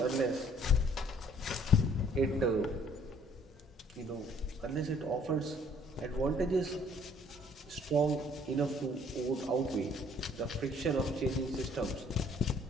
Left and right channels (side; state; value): both; normal; correlation 0.59